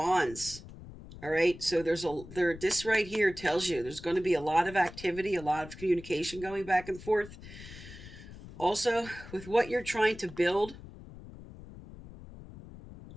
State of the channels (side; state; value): left; noise; rumble, 15 dB below the sound